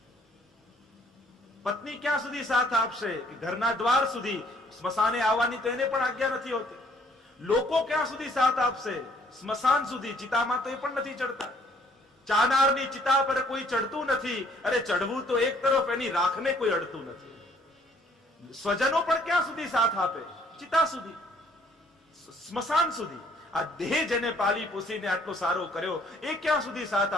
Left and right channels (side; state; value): both; normal; correlation 0.62